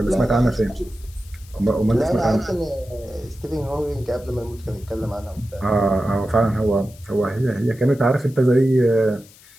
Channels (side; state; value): left; noise; hiss, 24 dB below the sound